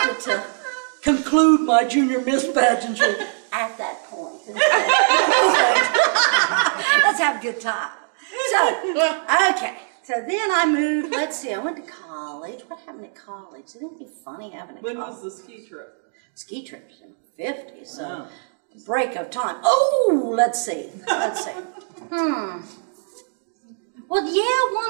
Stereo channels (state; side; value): silent; left; digital silence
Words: to conclude my junior Miss pageantry at that point. Let's have a good time. So, okay. So then I moved, let's see, I went to college. What happened at college? Didn't it be funny having a college? When was the ski trip? Ski trips in the 50s, so break of time. Oh, let's see. Well, yeah, one